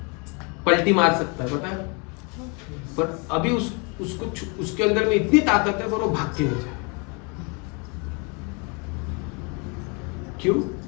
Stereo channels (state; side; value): quieter; right; 32.9 dB